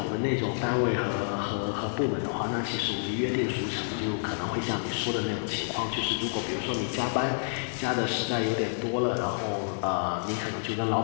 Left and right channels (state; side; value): silent; right; digital silence